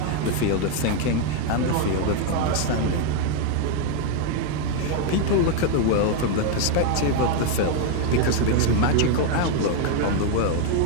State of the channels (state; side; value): different; both; correlation 0.01